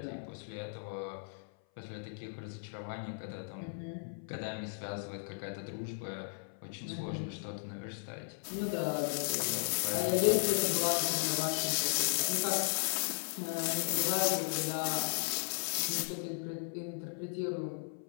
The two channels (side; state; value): right; silent; 54 dB below the other